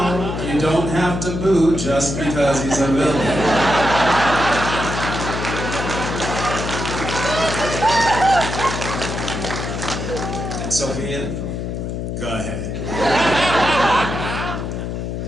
you don't have to boo just because he's a villain. Sophia, go ahead.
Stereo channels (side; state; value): left; noise; hum, 4 dB below the sound